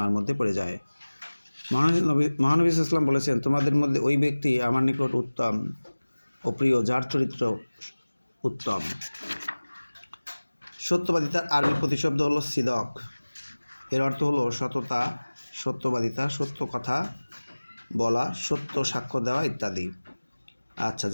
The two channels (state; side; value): inverted; both; correlation -1.00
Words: মধ্যে পড়ে যায়। মহানবী সাল্লাল্লাহু আলাইহি ওয়াসাল্লাম বলেছেন, তোমাদের মধ্যে ওই ব্যক্তি আমার নিকট উত্তম ও প্রিয় যার চরিত্র উত্তম। সত্যবাদিতার আরবি প্রতিশব্দ হলো সিদক। এর অর্থ হলো সততা, সত্যবাদিতা, সত্য কথা বলা, সত্য সাক্ষ্য দেওয়া ইত্যাদি। আচ্ছা,